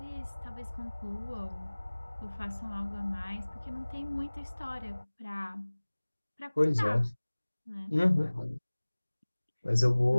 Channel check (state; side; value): inverted; both; correlation -1.00